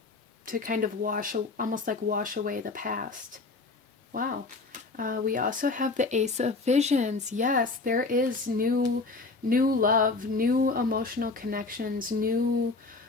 to kind of almost like wash away the past. Wow. We also have the Ace of Visions. Yes, there is new love, new emotional connections, new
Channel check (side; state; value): right; quieter; 3.7 dB